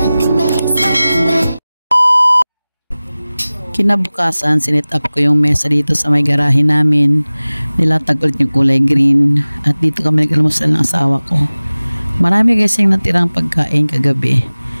상큼해. Kinabukasan, sinit up ko yung mesa dito sa may garahe namin. Nilatag ulit yung kulay green. At dito kami nag-almusal ng asawa ko. Marami kasi yung natirang pagkain kagabi.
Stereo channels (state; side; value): inverted; both; correlation -0.98